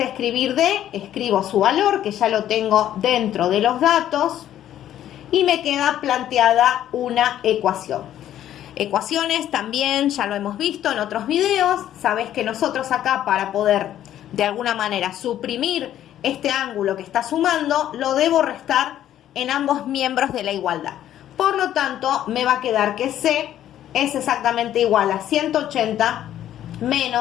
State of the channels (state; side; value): quieter; right; 11.7 dB